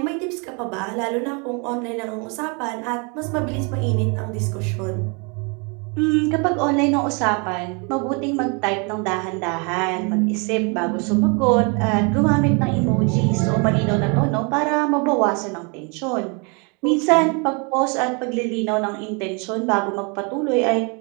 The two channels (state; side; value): quieter; left; 33.2 dB